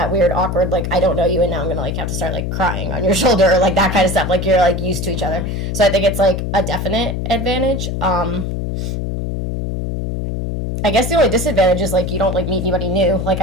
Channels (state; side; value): noise; left; hum, 3 dB below the sound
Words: weird, awkward, like, I don't know you, and now I'm gonna, like, have to start, like, crying on your shoulder, or, like, that kind of stuff. Like, you're, like, used to each other. So I think it's, like, a definite advantage. I guess the only disadvantage is, like, you don't, like, meet anybody new. Like,